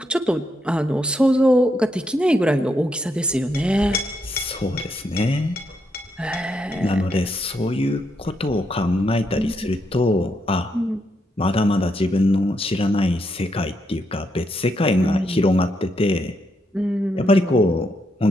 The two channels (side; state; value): both; normal; correlation 0.79